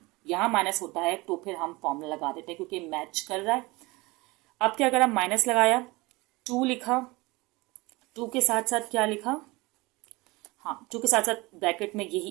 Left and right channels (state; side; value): quieter; left; 23.0 dB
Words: यहाँ माइनस होता है तो फिर हम फॉर्मूला लगा देते हैं क्योंकि मैच कर रहा है। अब क्या करा, माइनस लगाया, 2 लिखा, 2 के साथ साथ क्या लिखा, हाँ 2 के साथ साथ ब्रैकेट में